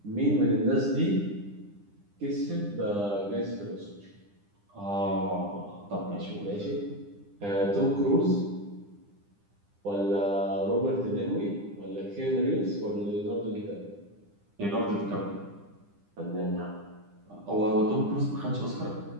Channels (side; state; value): left; late; 9.9 ms